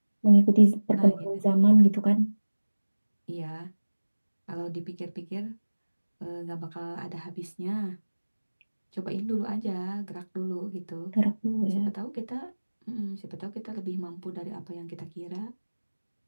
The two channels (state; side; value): inverted; both; correlation -1.00